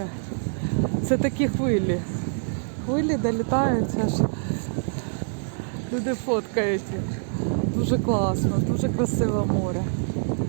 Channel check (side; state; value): left; silent; digital silence